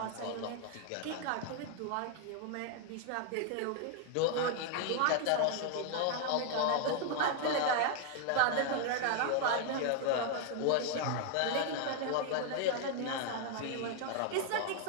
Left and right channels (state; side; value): different; both; correlation 0.00